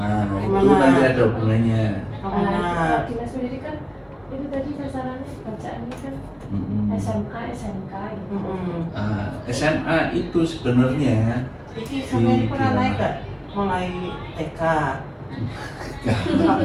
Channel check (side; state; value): both; identical; correlation 1.00